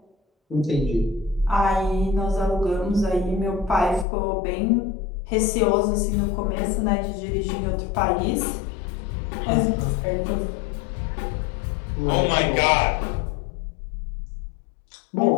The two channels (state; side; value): drops out; right; at 4.0 s